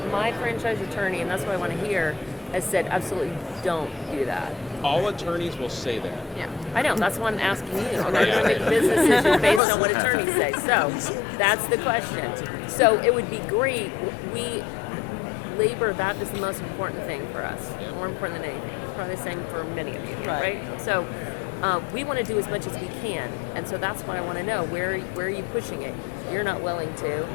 franchise attorney, and that's what I want to hear, has said absolutely don't do that. All attorneys will say that. Yeah, I know. That's why I'm asking you. I'm not going to make a business decision based on what attorneys say. So that's the question. So it would be great. Labor, that is the most important thing for us. More important than anything. Probably the same for many of you, right? So we want to do as much as we can, and so that's why I want to know where are you pushing it? You're not willing to.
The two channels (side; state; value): right; drops out; at 9.6 s